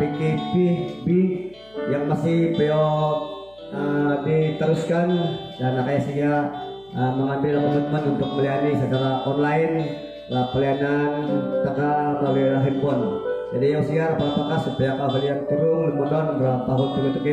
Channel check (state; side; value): noise; left; hum, 29 dB below the sound